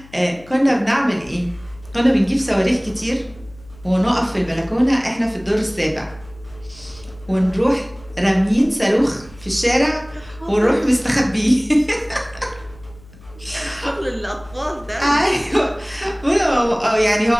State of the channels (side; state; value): left; noise; hum, 22 dB below the sound